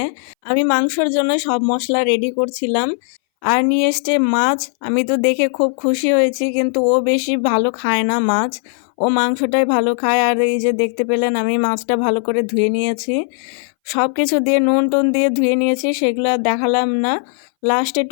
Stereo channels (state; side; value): silent; right; 63 dB below the other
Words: আমি মাংসর জন্য সব মশলা রেডি করছিলাম আর নিয়ে এসছে মাছ। আমি তো দেখে খুব খুশি হয়েছি, কিন্তু ও বেশি ভালো খায় না মাছ, ও মাংসটাই ভালো খায়। আর এই যে দেখতে পেলেন আমি মাছটা ভালো করে ধুয়ে নিয়েছি, সব কিছু দিয়ে নুন টুন দিয়ে ধুয়ে নিয়েছি, সেগুলো আর দেখালাম না, লাস্টে